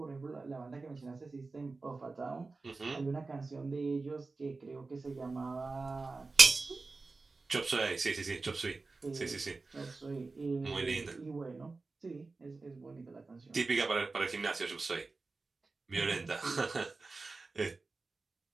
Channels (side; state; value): left; quieter; 3.8 dB